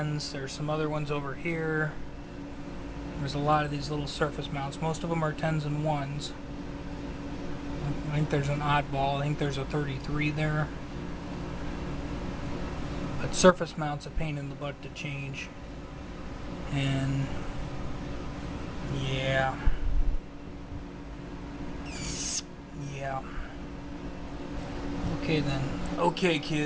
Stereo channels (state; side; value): identical; both; correlation 1.00